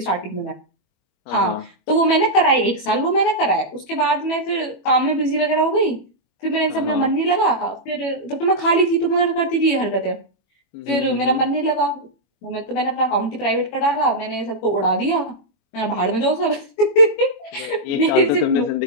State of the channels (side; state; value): right; late; 21 ms